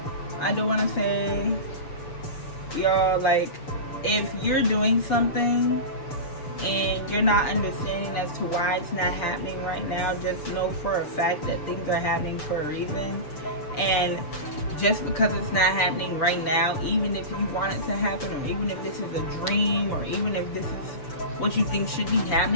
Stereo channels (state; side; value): late; right; 6.8 ms